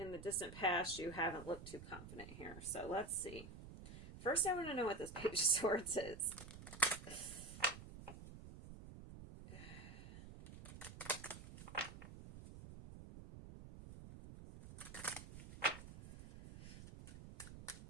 the distant past, you haven't looked too confident here. So let's see. First, I want to know what this Page of Swords is.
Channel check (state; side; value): noise; right; rumble, 13 dB below the sound